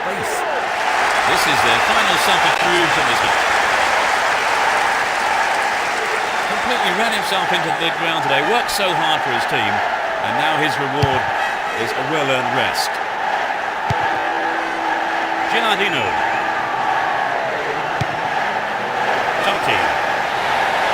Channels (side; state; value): both; identical; correlation 1.00